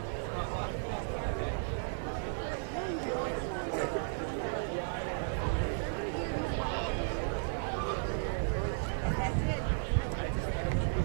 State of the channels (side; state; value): left; silent; digital silence